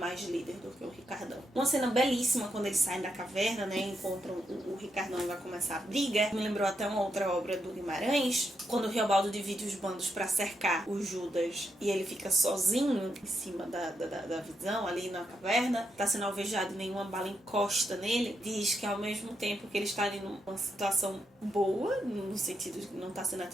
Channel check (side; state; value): both; normal; correlation 0.82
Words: líder do que o Ricardão. Uma cena belíssima quando eles saem da caverna, né? Encontram o Ricardão e vai começar a briga. Me lembrou até uma outra obra do Guimarães. Quando o Riobaldo divide os bandos para cercar o Judas e ele fica sozinho em cima da visão ali na caverna. Tá sendo alvejado, nenhuma bala encosta nele, diz que ao mesmo tempo que ele está ali numa situação boa, no sentido de que não está sendo